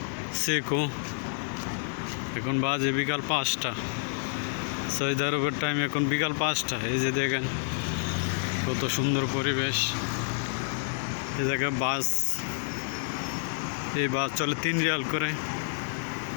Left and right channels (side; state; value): right; silent; 59 dB below the other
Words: সেকো। এখন বাজে বিকাল 5টা। সৌদি আরবের টাইম এখন বিকাল 5টা। এই যে দেখেন কত সুন্দর পরিবেশ। এই জায়গায় বাস, এই বাস চলে 3 রিয়াল করে।